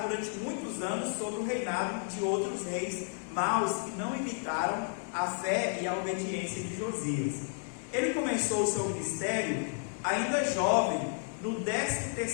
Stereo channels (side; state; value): right; silent; 56 dB below the other